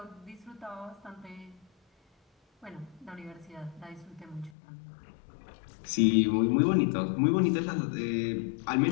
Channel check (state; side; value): drops out; right; at 4.5 s